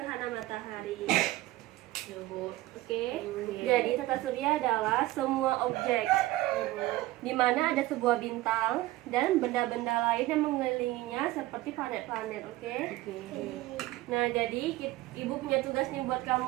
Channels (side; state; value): left; quieter; 17.4 dB